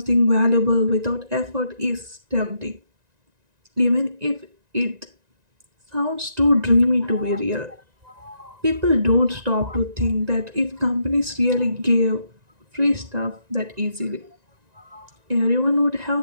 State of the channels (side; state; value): left; late; 1.9 ms